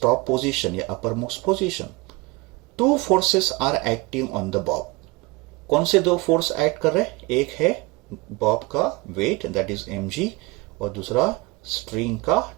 top position या uppermost position. Two forces are acting on the bob. कौन से दो फोर्स एक्ट कर रहे हैं? एक है बॉब का वेट दैट इज mg और दूसरा स्ट्रिंग का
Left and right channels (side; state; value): left; quieter; 23.5 dB